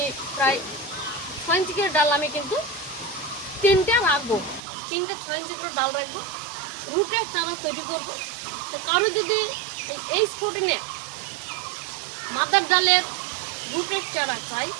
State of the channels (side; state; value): left; drops out; at 4.6 s